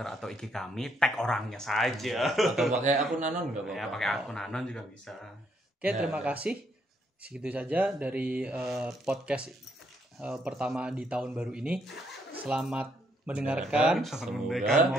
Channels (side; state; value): both; normal; correlation 0.73